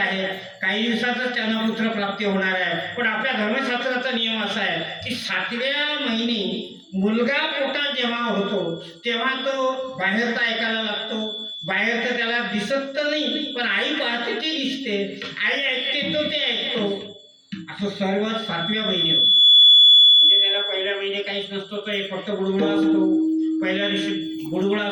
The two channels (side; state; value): both; identical; correlation 1.00